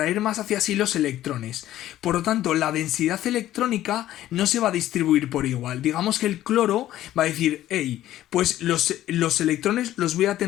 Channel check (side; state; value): right; quieter; 13.5 dB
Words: más hacia sí los electrones. Por lo tanto, la densidad electrónica no se va a distribuir por igual. Digamos que el cloro va a decir, hey, pues los electrones los voy a